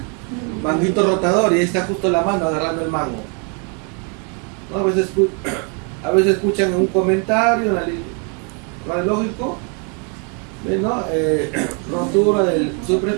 manguito rotador, y ahí está justo la mano agarrando el mango. ¿No? A veces escuchan en un comentario radiológico, ¿no? Rotura del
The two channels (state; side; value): quieter; left; 37.0 dB